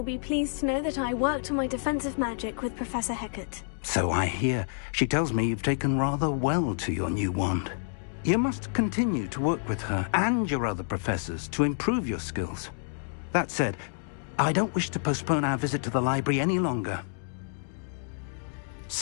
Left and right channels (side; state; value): right; silent; digital silence